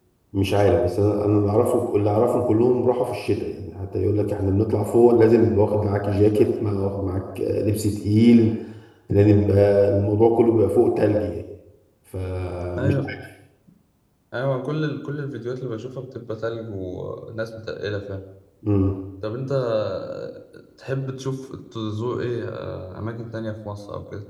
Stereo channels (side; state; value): both; identical; correlation 1.00